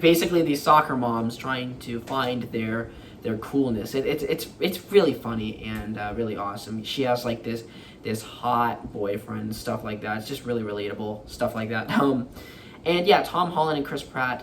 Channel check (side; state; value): both; identical; correlation 1.00